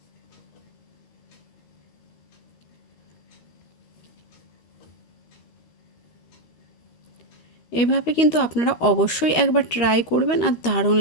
এভাবে কিন্তু আপনারা অবশ্যই একবার ট্রাই করবেন, আর দারুণ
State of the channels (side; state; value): right; late; 13 ms